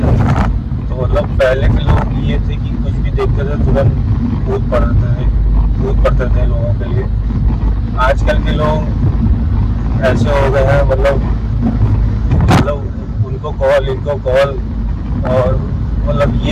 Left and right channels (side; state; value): both; identical; correlation 1.00